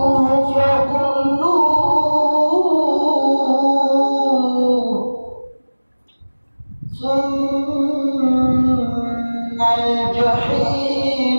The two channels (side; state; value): both; inverted; correlation -1.00